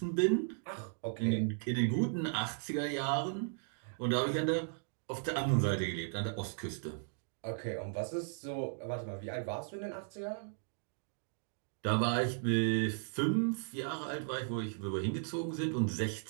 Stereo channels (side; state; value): left; silent; digital silence